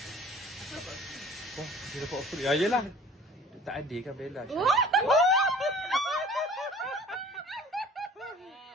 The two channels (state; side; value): normal; both; correlation 0.48